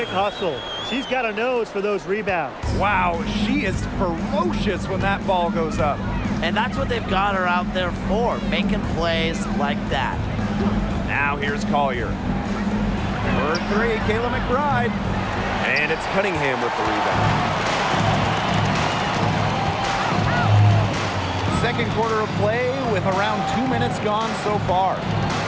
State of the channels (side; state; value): both; identical; correlation 1.00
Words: hustle. She's got a nose for those rebounds. Wow, she is ferocious when that ball goes up. And that's what they've got her out there for, making plays like that. Now here's Collier. For 3, Kayla McBride. And it's Cunningham with the rebound. Second quarter of play with around 2 minutes gone so far.